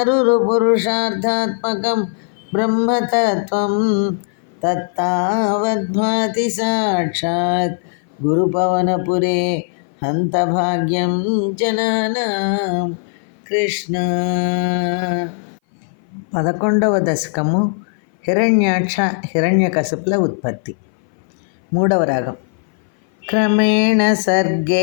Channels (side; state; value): right; silent; 58 dB below the other